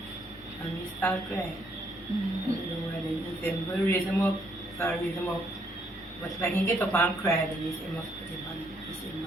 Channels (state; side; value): normal; both; correlation 0.71